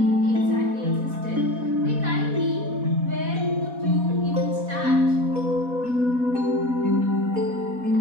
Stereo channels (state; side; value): late; left; 4.1 ms